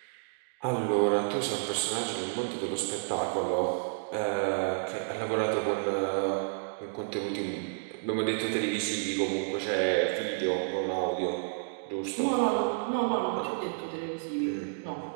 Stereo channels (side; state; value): left; silent; digital silence